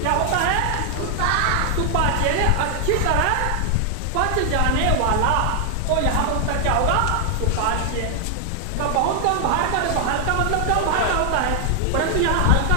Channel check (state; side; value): different; both; correlation 0.00